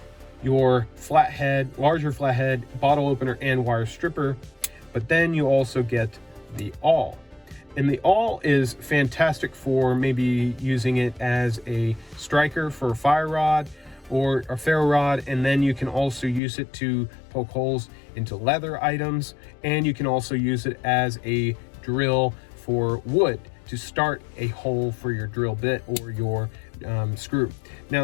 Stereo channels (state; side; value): drops out; right; at 16.4 s